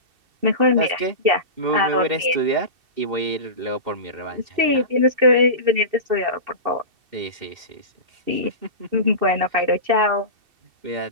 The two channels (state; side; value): late; left; 2.7 ms